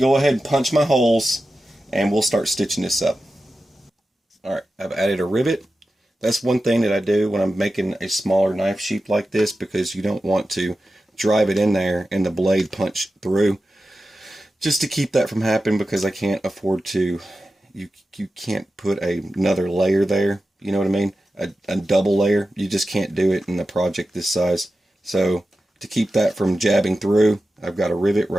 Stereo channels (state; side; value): normal; both; correlation 0.93